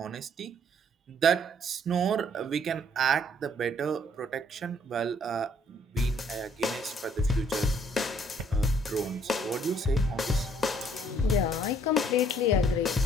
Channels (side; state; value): both; normal; correlation 0.63